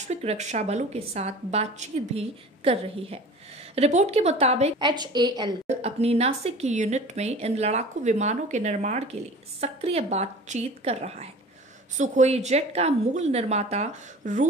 रक्षा बलों के साथ बातचीत भी कर रही है। रिपोर्ट के मुताबिक HAL अपनी नासिक की यूनिट में इन लड़ाकू विमानों के निर्माण के लिए सक्रिय बातचीत कर रहा है। सुखोई जेट का मूल निर्माता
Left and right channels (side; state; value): both; normal; correlation 0.41